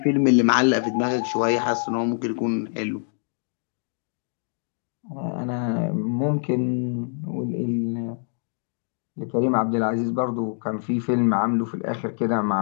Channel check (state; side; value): silent; right; digital silence